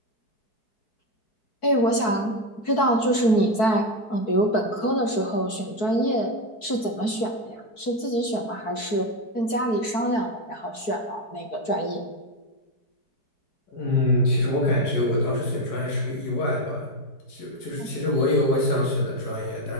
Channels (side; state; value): right; late; 4.6 ms